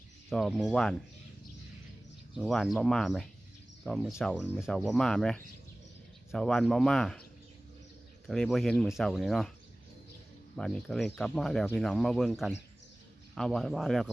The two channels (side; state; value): both; normal; correlation 0.98